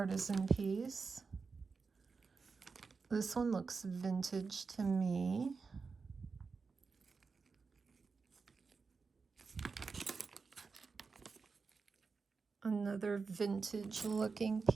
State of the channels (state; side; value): quieter; left; 4.8 dB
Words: piece. This one looks vintage to me. Another vintage looking